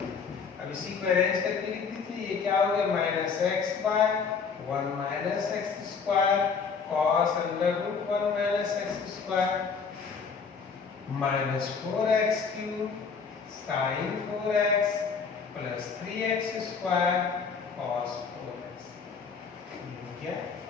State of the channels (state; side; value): quieter; right; 5.6 dB